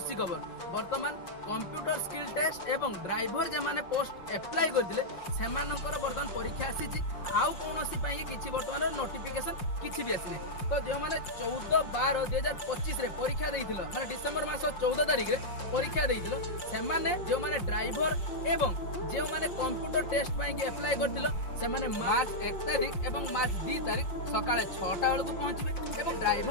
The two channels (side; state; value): right; late; 5.7 ms